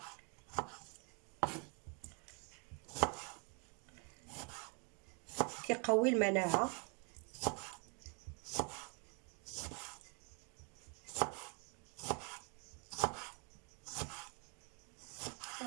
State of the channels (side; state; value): left; quieter; 35.5 dB